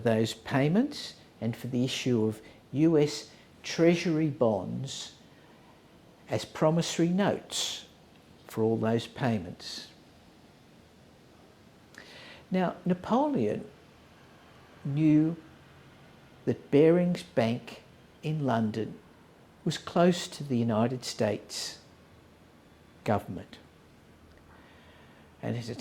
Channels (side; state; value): both; identical; correlation 1.00